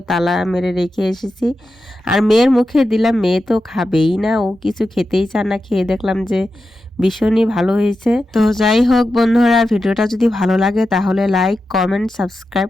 তালা মেরে রেখে এসেছি। আর মেয়ের মুখে দিলাম, মেয়ে তো খাবেই না, ও কিছু খেতেই চায় না। খেয়ে দেখলাম যে ভীষণই ভালো হয়েছে। তো যাই হোক বন্ধুরা, ভিডিওটা যদি ভালো লাগে তাহলে লাইক কমেন্ট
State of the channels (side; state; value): both; normal; correlation 0.90